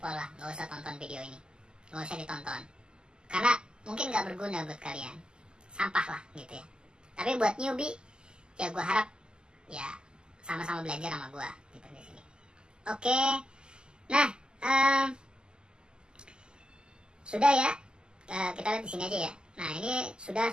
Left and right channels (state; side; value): late; left; 0.047 ms